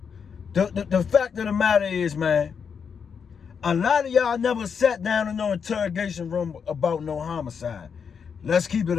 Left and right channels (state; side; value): quieter; right; 6.6 dB